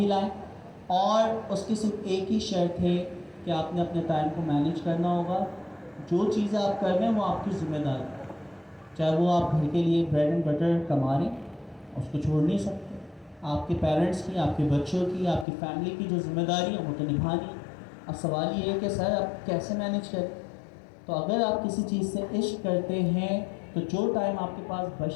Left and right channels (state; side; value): drops out; right; at 15.5 s